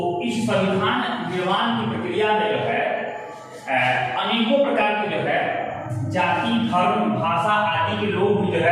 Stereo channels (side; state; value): both; identical; correlation 1.00